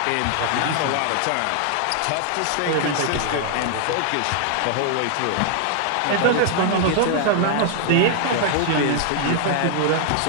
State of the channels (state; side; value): different; both; correlation 0.00